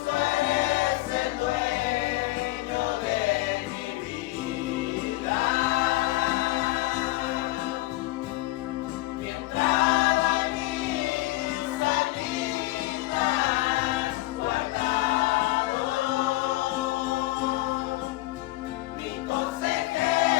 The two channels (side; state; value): right; quieter; 19.2 dB